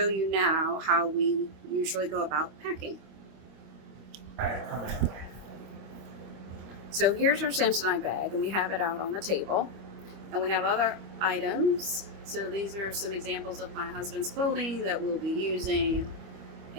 you now how we usually go about packing. So, here's our Samsonite bag, and we have it out on the table. And we have other items. So these are some examples of my husband's clothing that we'll be using.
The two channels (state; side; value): late; left; 25 ms